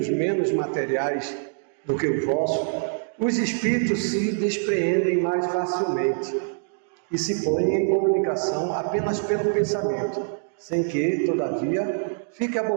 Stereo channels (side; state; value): left; silent; digital silence